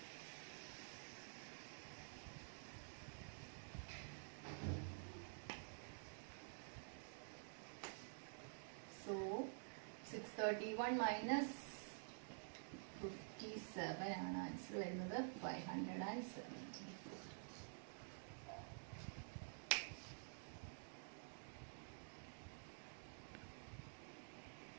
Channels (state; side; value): silent; left; digital silence